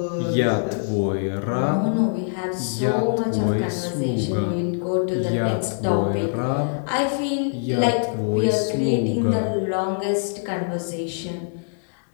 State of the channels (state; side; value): silent; right; digital silence